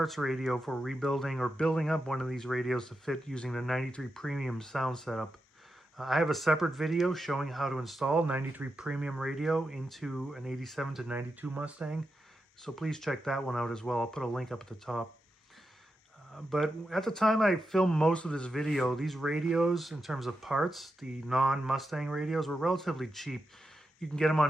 radio for rebuilding or building up one of these radios to fit using the 93 Premium Sound setup. I have a separate video showing how to install 93 Premium radio into an 87 to 92 Mustang. So please check that one out as well. I'll put a link up at the top. But at the time I filmed most of this video, these radios, in terms of parts, the non-Mustang radios, were relatively cheap. You can get them on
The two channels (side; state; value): both; normal; correlation 0.88